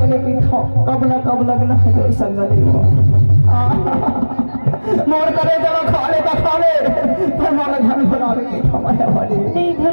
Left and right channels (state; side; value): inverted; both; correlation -1.00